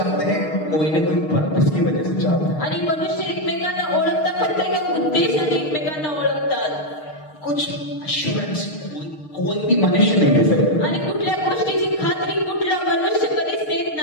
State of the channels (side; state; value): right; late; 6.5 ms